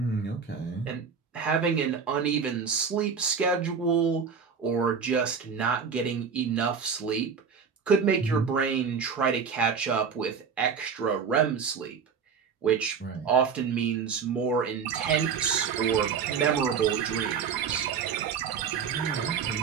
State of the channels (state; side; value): quieter; left; 6.3 dB